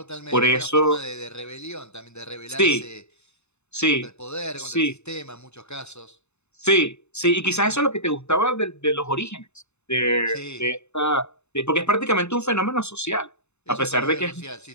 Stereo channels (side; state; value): right; late; 0.81 ms